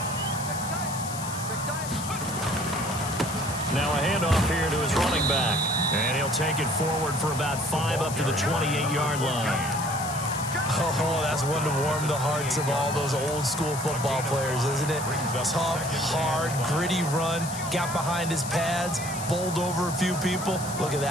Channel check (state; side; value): noise; left; hiss, 9 dB below the sound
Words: Now a handoff here to his running back. And he'll take it forward for about 5 up to the 28-yard line. Oh, that's one to warm the hearts of all those old-school football players, isn't it? Tough, hard, gritty run. Got behind his pads, bowled over a few people. Look at